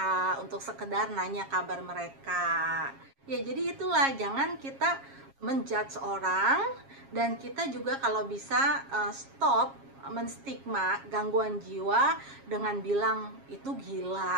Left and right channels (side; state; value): left; late; 7.3 ms